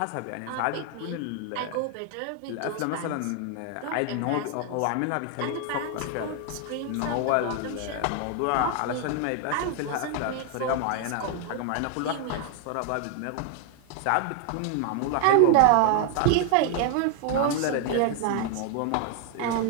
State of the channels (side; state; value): both; different; correlation 0.00